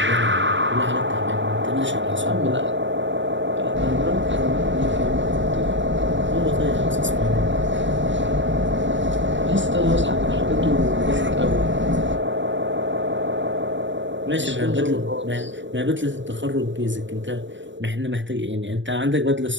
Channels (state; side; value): late; left; 0.54 ms